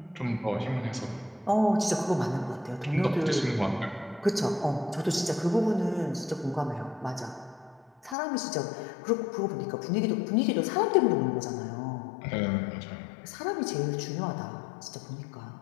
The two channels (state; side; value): drops out; right; at 8.2 s